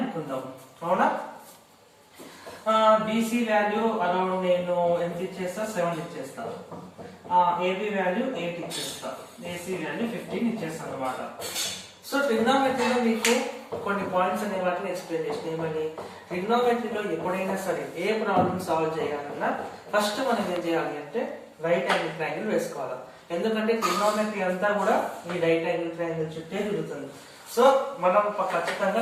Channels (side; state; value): both; identical; correlation 1.00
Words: అవునా. బీసీ వాల్యూ అరౌండ్ నేను ఎంత ఇచ్చేస్తా, 7 ఇచ్చేస్తా. ఏబి వాల్యూ 8 ఇచ్చేస్తా. ఏసీ వాల్యూ 15 ఇచ్చేస్తా అనమాట. సో ట్రిగ్నోమెట్రీలో మీకు కొన్ని పాయింట్స్ అనే వాటిని ఎక్స్ప్లెయిన్ చేసిన ఏమని, ట్రిగ్నోమెట్రీలో ఎప్పుడైనా సరే ఏ ప్రాబ్లమ్ సాల్వ్ చేయాలన్నా ఫస్ట్ మనం ఏం చేయాలి అంటే రైట్ యాంగిల్ ట్రయాంగిల్ వేసుకోవాలి. ఎందుకంటే ట్రిగ్నోమెట్రీ అంతా కూడా ఈ రైట్ యాంగిల్ ట్రయాంగిల్ చుట్టే తిరుగుతుంది. సో మనం ఖచ్చితంగా